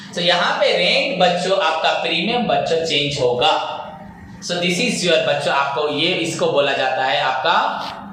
सो यहाँ पे रेंट बच्चों आपका प्रीमियम बच्चों चेंज होगा। सो दिस इज योर बच्चों, आपको ये इसको बोला जाता है आपका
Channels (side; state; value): both; identical; correlation 1.00